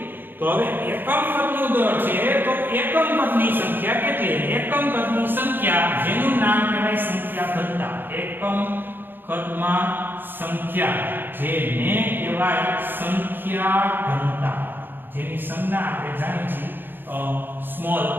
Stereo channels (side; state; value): left; late; 0.096 ms